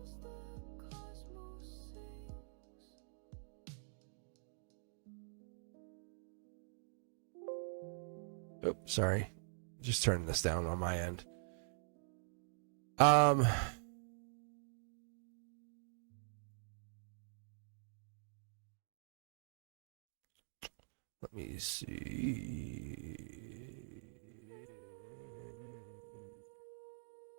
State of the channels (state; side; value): silent; left; digital silence